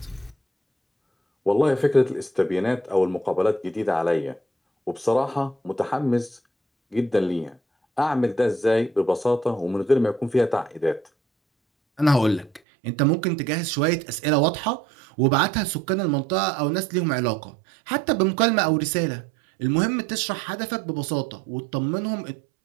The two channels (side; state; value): left; drops out; at 12.6 s